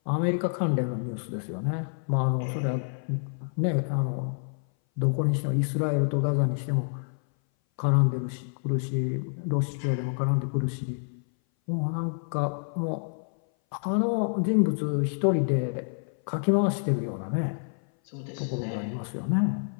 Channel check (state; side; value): silent; right; 58 dB below the other